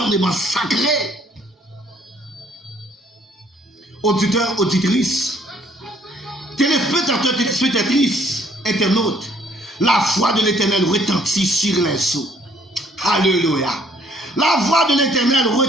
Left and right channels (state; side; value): normal; both; correlation 0.63